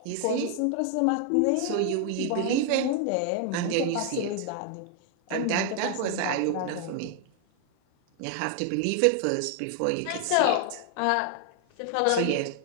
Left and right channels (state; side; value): different; both; correlation 0.00